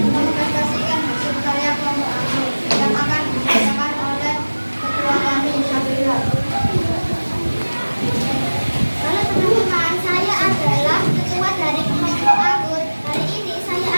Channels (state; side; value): inverted; both; correlation -1.00